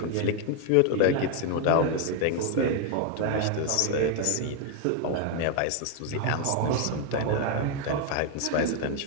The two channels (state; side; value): different; both; correlation 0.00